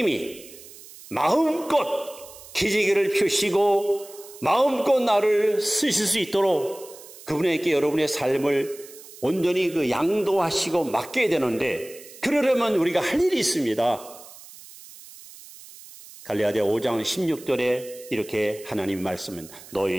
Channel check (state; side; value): noise; right; hiss, 18 dB below the sound